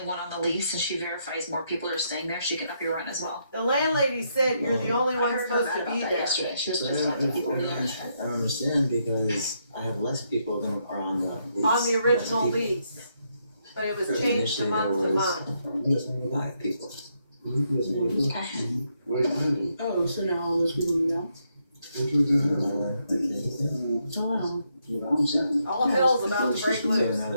on the lease and she verifies more people are staying there, she can up your rent as well. The landlady said you're the only one supposed to be there. Yesterday. She was supposed to talk to people over there. I don't understand because I have less people than are on the lease. On the original lease. But it was changed to month to month. 5 people. Okay. Oh, so now all those people are gone? Oh, wow. All hell's about to break So loose. now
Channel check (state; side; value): inverted; both; correlation -0.77